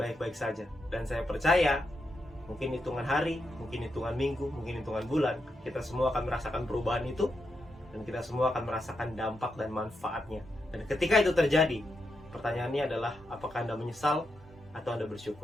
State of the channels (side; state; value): both; normal; correlation 0.84